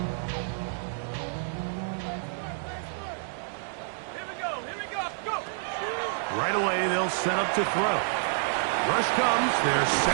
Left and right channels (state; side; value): silent; left; digital silence